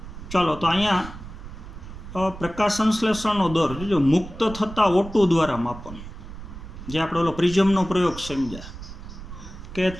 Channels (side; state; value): right; noise; rumble, 12 dB below the sound